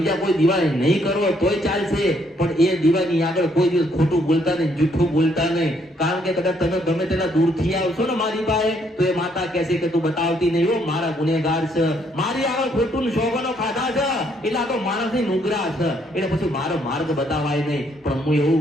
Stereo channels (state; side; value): normal; both; correlation 0.70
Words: કોઈ દીવા નહીં કરો તોય ચાલશે, પણ એ દીવાની આગળ કોઈ દિવસ ખોટું બોલતા નહીં, જૂઠું બોલતા નહીં. કારણ કે કદાચ તમે ગમે તેના દૂરથી આવશો ને મારી પાસે તો એ માતા કહેશે કે તું બતાવતી નહીં હો, મારા ગુનેગાર છે, મારી આગળ ખોટું શોભનો ખાધા છે એટલે આ તો માણસની નુગરા છે, એટલે પછી મારો માર્ગ બતાવાય નહીં. પણ હું